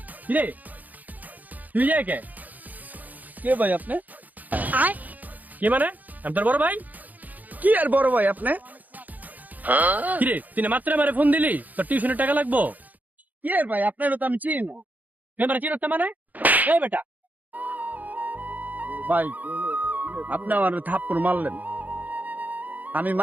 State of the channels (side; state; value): left; late; 0.081 ms